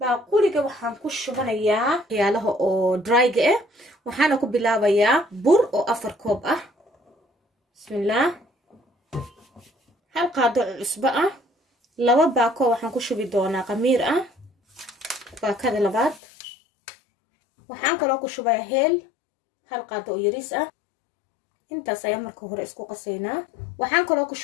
baaquliga waxaan ku shubanayaa waxyaalaha oo dry-ga ah waxaana ku bilaabayaa bur oo 4 koob ah bismillah hal qaado cusbo ah laba baako waxaan ku shubi doonaa qamiir ah baakada labaad waxaan kaloo ku shubayaa heel hal qaado oo yariis ah intaas ayaa marka hore isku qasaynaa waxaan kaloo ku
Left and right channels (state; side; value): drops out; right; at 16.2 s